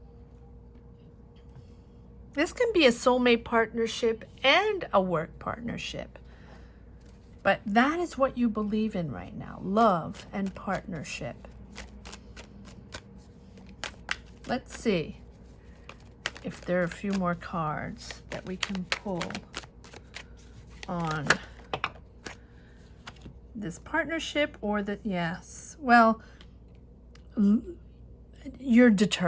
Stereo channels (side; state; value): both; identical; correlation 1.00